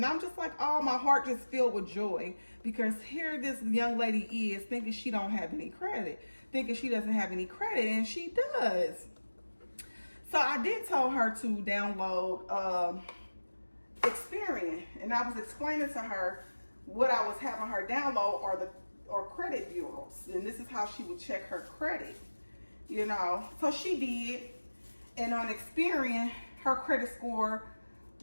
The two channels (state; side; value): inverted; both; correlation -1.00